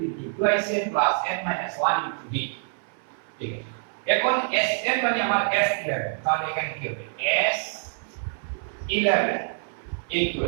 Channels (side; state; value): left; silent; 61 dB below the other